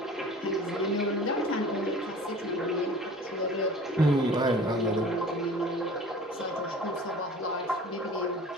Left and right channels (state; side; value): normal; both; correlation 0.44